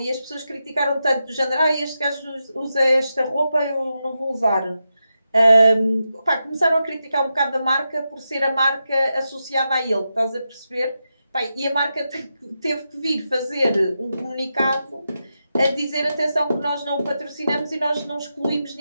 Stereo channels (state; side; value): inverted; both; correlation -0.88